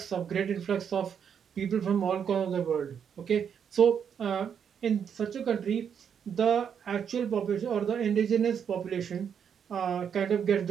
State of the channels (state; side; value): quieter; left; 7.7 dB